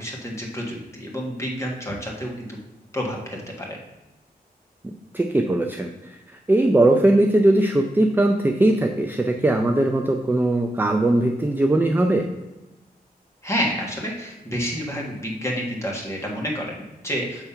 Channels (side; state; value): both; normal; correlation 0.85